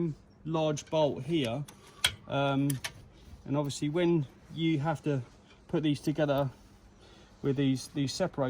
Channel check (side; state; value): both; identical; correlation 1.00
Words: large bolt here, and And obviously when you have to put these together with these